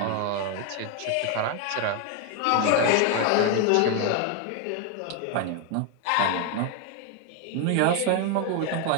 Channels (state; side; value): different; both; correlation 0.01